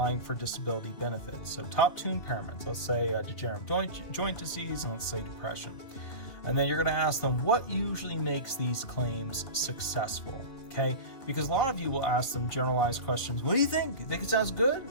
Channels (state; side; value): late; right; 3.6 ms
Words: for disability benefits. So top 2 impairments, let's say degenerative joint disease, and let's say depression. And then you're gonna ask them what usually makes these claims successful, okay? Because a lot of you will ask them generalized questions. What do you think? You think it sounds good?